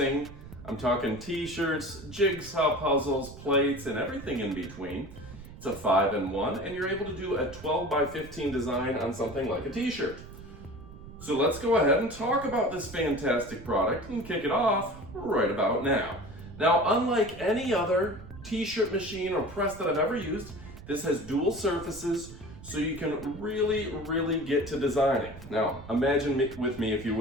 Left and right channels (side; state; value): right; noise; rumble, 15 dB below the sound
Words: I'm talking t-shirts, jigsaw puzzles, plates, and everything in between. It's a 5-in-1, and you're able to do a 12x15 design on something like a t-shirt. So let's go ahead and talk about this fantastic product and kick it off right about now. Now, unlike any other t-shirt machine or press that I've ever used, this has dual surfaces, so you can really get to designing. Now, imagine with me, if you